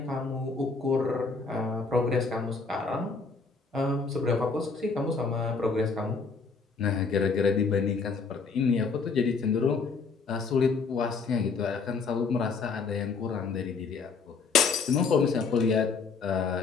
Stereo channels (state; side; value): quieter; right; 4.7 dB